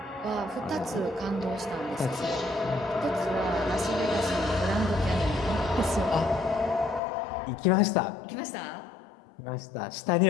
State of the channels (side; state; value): right; drops out; at 7.0 s